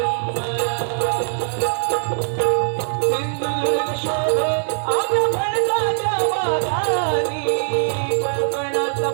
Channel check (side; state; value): left; silent; digital silence